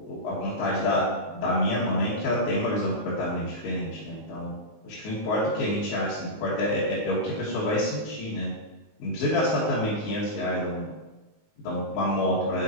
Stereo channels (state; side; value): late; right; 19 ms